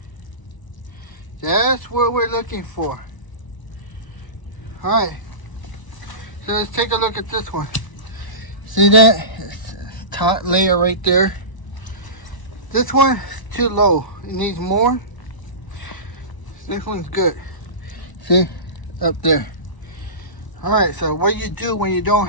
That's what we're looking for. Alright, so let's take a look at this one. See that? Top layer right there. This one is too low. It needs more. This one's good. See? Up there. Alright, so what you do when you don't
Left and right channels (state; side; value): late; right; 1.0 ms